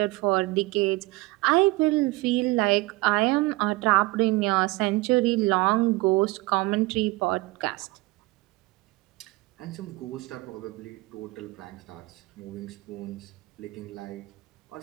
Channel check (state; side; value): quieter; left; 22.1 dB